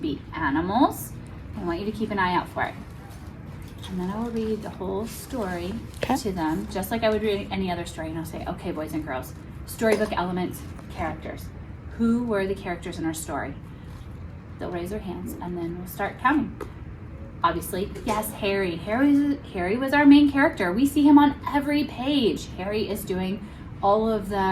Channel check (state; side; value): identical; both; correlation 1.00